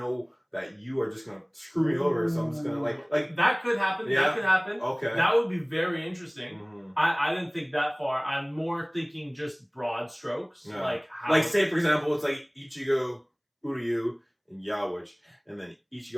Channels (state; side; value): identical; both; correlation 1.00